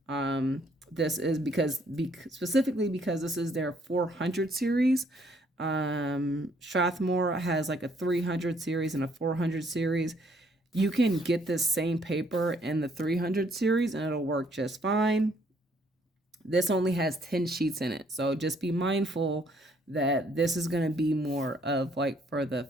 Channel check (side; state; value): both; normal; correlation 0.66